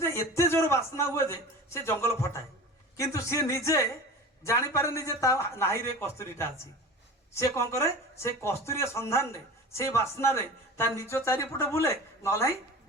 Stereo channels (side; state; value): both; normal; correlation 0.35